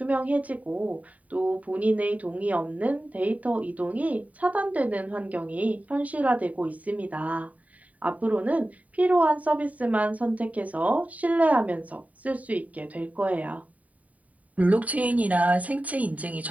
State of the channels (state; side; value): late; left; 0.070 ms